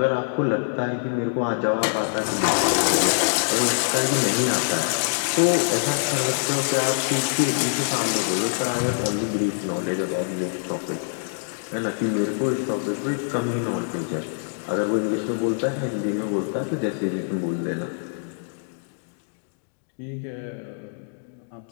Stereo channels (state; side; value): silent; right; digital silence